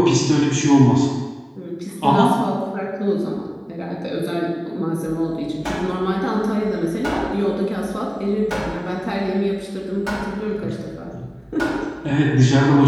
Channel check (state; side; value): identical; both; correlation 1.00